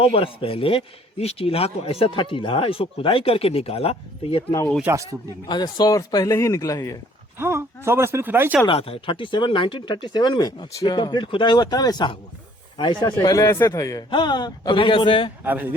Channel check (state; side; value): normal; both; correlation 0.59